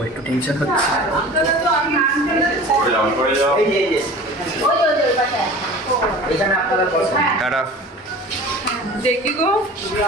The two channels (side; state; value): both; normal; correlation 0.40